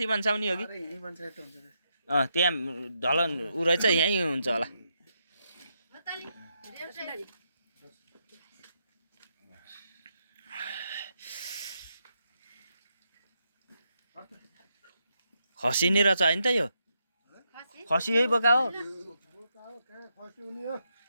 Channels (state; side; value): inverted; both; correlation -0.81